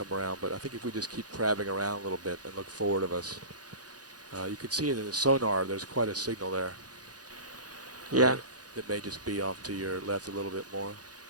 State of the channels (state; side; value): late; left; 0.68 ms